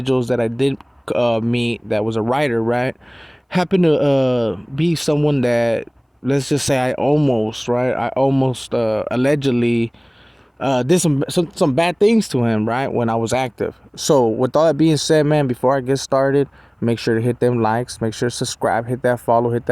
that I did meet that was a writer, right, happened to be someone that, let's just say, I almost allegedly did some bad things to him, right, when I was active. So with all that being said, man, before I get started, make sure to hit them likes, make sure to subscribe, hit that follow, hit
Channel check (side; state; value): both; identical; correlation 1.00